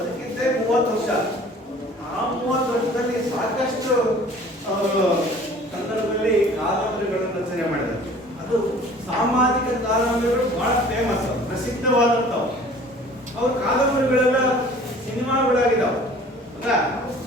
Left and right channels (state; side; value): normal; both; correlation 0.49